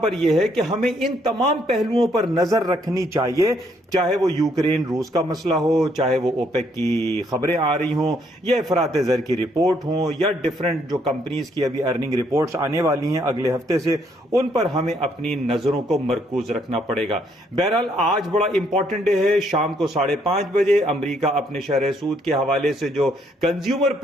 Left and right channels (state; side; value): normal; both; correlation 0.70